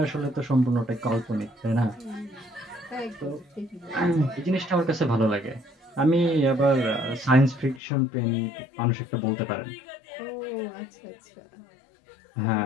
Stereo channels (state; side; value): drops out; right; at 7.8 s